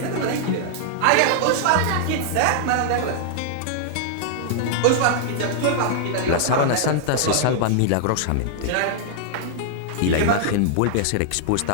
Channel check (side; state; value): both; different; correlation -0.01